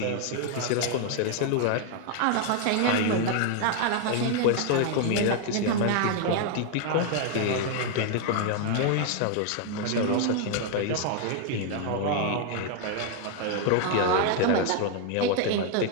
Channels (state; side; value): different; both; correlation 0.00